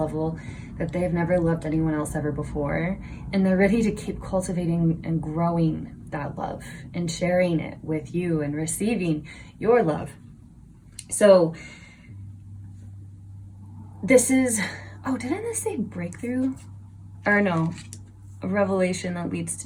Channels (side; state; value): both; identical; correlation 1.00